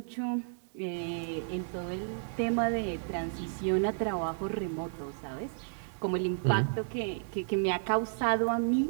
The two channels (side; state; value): left; silent; digital silence